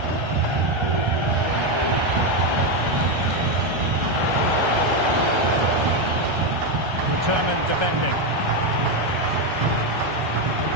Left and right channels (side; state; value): left; late; 1.3 ms